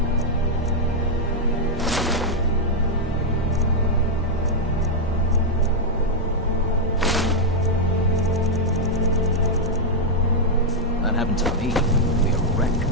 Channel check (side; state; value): both; normal; correlation -0.02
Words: That happened to me. It'd be a wreck.